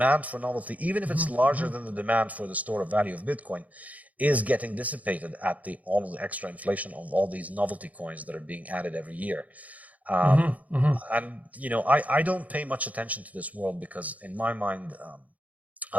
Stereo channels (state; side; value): late; left; 0.073 ms